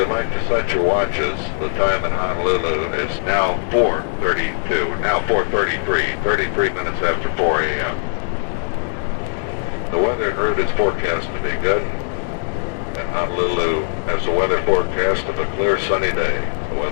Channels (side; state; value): right; silent; digital silence